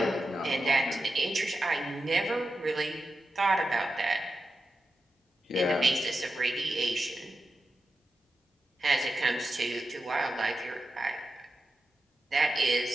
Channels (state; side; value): normal; both; correlation 0.90